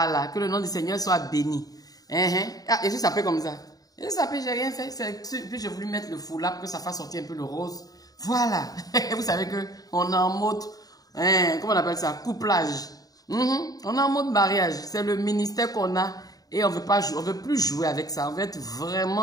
que le nom du Seigneur soit béni. Ah, et je s'appelle comme ça. Je s'appelle, j'ai rien fait. Puis j'ai voulu mettre le foulard pour que ça fasse sortir un peu le rose. Voilà. Vous savez qu'on est en mode, comment on appelle ça? Couplage. On est en mode mariage. C'est le ministère qu'on a et on veut pas jouer, on veut plus jouer avec ça. On veut être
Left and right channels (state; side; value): late; right; 0.18 ms